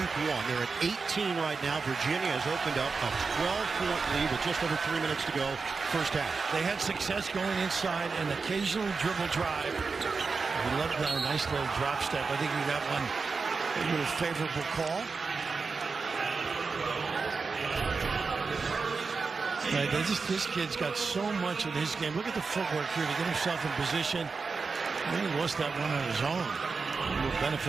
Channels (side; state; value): left; quieter; 4.6 dB